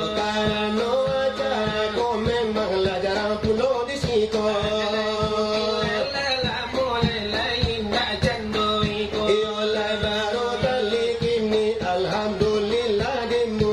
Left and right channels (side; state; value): both; identical; correlation 1.00